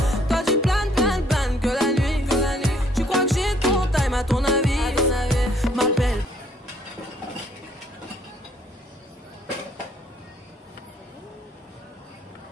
Toi tu planes que la nuit. Tu crois que j'ai ton time à ton avis. M'appelle.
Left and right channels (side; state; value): both; normal; correlation 0.64